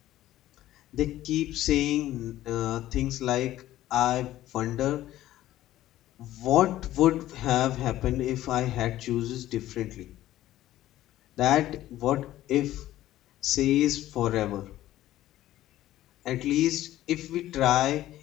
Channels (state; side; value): quieter; right; 14.3 dB